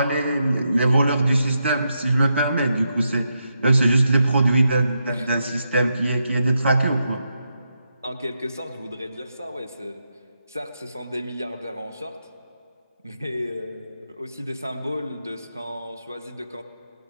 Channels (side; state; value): both; inverted; correlation -0.84